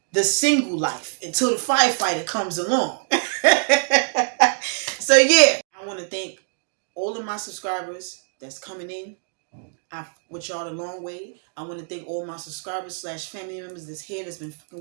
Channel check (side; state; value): left; silent; digital silence